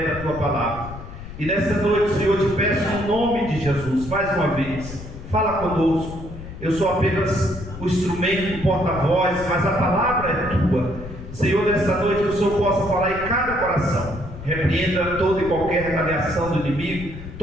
da tua palavra. E nesta noite, Senhor, te peço no nome de Jesus, mais uma vez, fala conosco. Eu sou apenas o instrumento, o porta-voz, mas a palavra é tua. Senhor, nesta noite, que o Senhor possa falar em cada coração. Repreenda toda e qualquer retaliação do inimigo,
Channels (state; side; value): noise; left; rumble, 12 dB below the sound